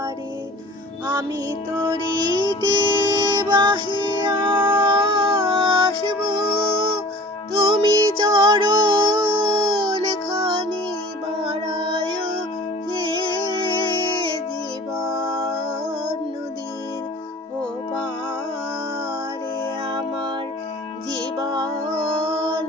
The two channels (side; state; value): both; normal; correlation 0.44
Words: আমি তরিতে বাহিয়া আসব, তুমি চরণ খানি বাড়ায় হে, জীবন নদীর ও পারে আমার জীবন